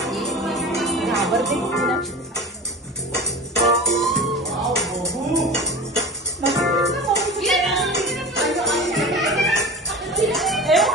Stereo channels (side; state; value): both; normal; correlation 0.32